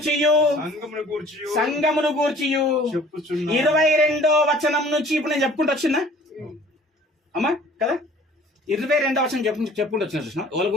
సంఘమును గూర్చియు 22వ వచనం నుంచి ఇప్పుడు నేను చెప్పుకుంటూ వచ్చిందా అమ్మా? కదా, 22వ వచనం చెప్పుకుంటూ వచ్చిన. చూసిన వాళ్ళ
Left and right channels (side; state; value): both; normal; correlation 0.51